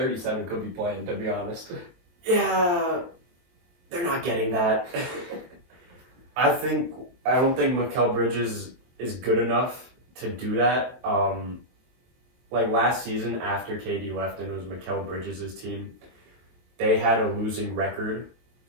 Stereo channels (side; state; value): left; late; 23 ms